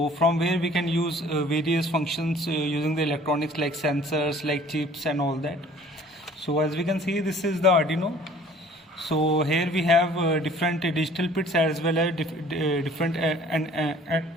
from where we can use various functions using the electronics like sensors, like chips and all that. So as we can see, this is the Arduino. So here we have different digital pins as well as different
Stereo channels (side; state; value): both; normal; correlation 0.52